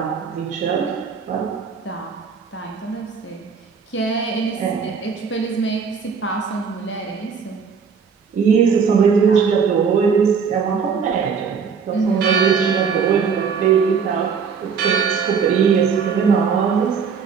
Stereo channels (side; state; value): left; quieter; 6.1 dB